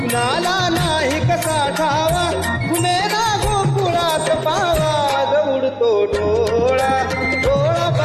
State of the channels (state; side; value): identical; both; correlation 1.00